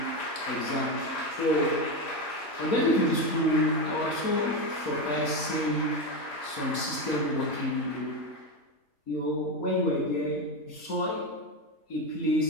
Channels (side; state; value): right; late; 4.2 ms